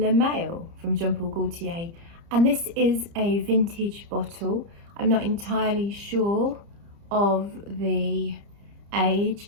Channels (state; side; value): late; left; 30 ms